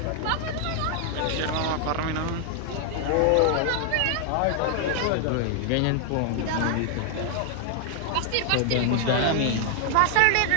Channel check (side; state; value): both; different; correlation 0.00